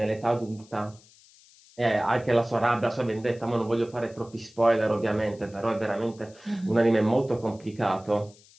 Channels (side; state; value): left; noise; hiss, 26 dB below the sound